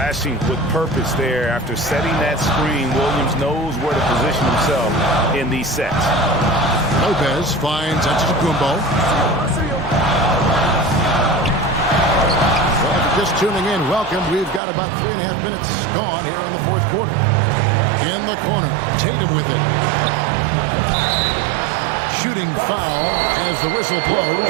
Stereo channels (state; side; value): drops out; left; at 14.6 s